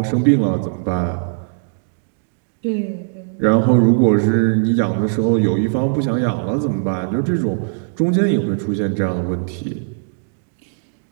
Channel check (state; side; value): silent; left; digital silence